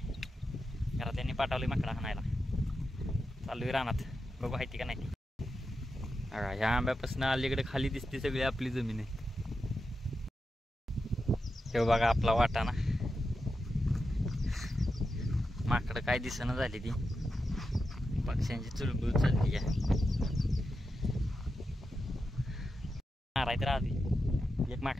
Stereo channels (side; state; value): both; normal; correlation 0.89